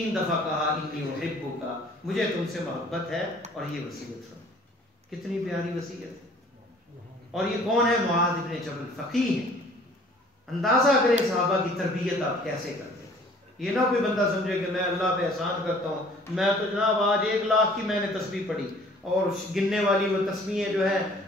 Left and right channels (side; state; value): both; normal; correlation 0.53